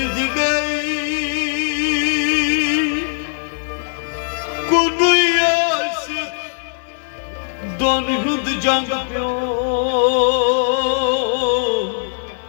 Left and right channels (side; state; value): right; silent; 59 dB below the other